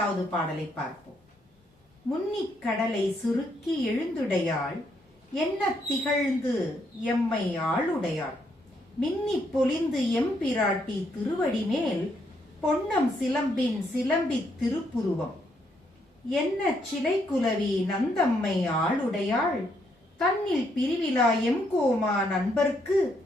பாடலை பார்ப்போம். முன்னிக் கடலை சுருக்கி எழுந்துடையாள், என்ன திகழ்ந்து எம்மை ஆளுடையாள், மின்னி பொலிந்து எம்பிராட்டி திருவடி மேல், பொன்னம் சிலம்பின் சிலம்பித் திருப்புருவம், என்ன சிலை குலவி நந்தம்மை ஆளுடையாள், தன்னில் பிரிவிலா எம்கோமா நண்பர்க்கு,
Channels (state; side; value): normal; both; correlation 0.74